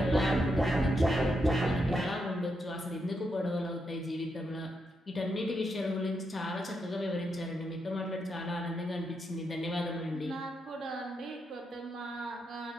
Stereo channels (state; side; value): normal; both; correlation 0.82